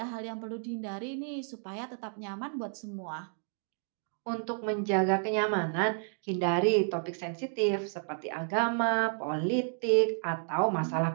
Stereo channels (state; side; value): silent; left; 57 dB below the other